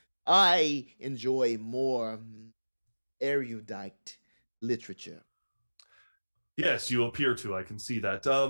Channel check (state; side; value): inverted; both; correlation -1.00